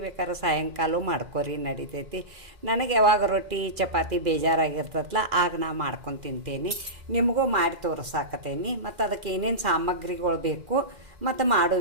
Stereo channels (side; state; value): left; late; 2.0 ms